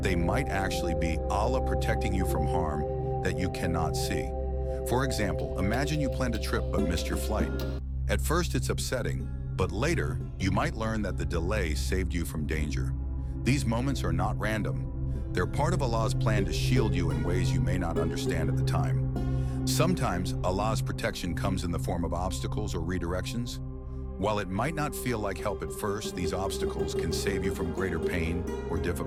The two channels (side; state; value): both; identical; correlation 1.00